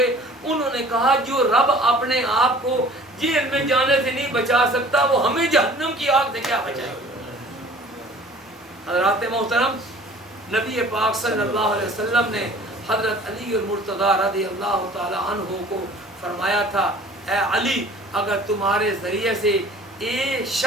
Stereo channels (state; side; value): normal; both; correlation 0.48